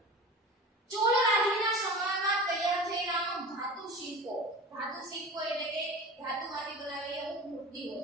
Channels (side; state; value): both; normal; correlation 0.34